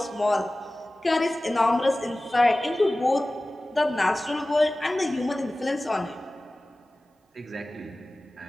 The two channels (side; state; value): both; normal; correlation 0.97